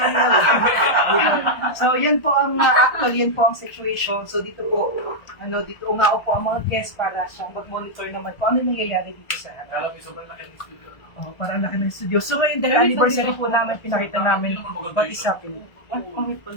na. So, yan po ang, actual, yan po ang situation. So, dito po, dito ungao po ang mga guests para siyang mag-monitor naman kung ano yung nangyayari dito sa Alam mo, sobrang laki ng studio. Oh, para ang laki ng studio. So, ngayon, dahil anniversary po namin, pinakita namin what is happening.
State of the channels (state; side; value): late; right; 1.5 ms